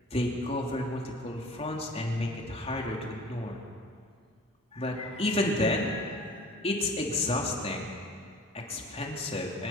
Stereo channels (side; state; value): both; normal; correlation 0.45